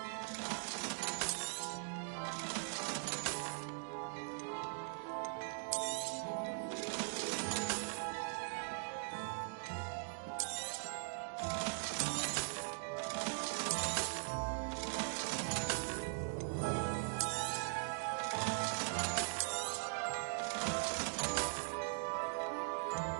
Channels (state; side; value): silent; left; digital silence